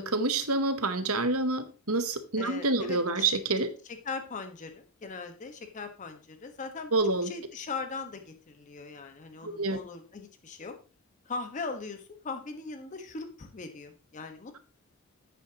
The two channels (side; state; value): both; normal; correlation -0.12